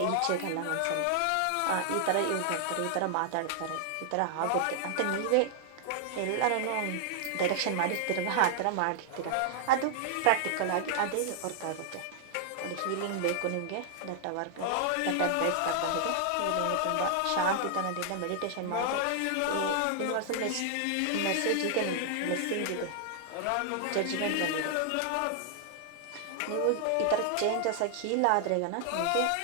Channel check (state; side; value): different; both; correlation 0.00